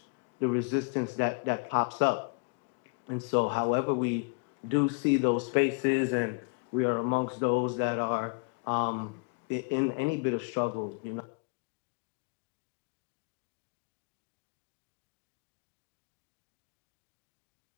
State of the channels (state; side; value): quieter; right; 33.4 dB